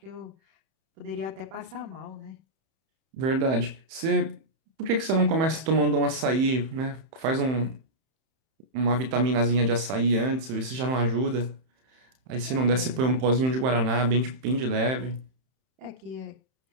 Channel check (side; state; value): left; late; 31 ms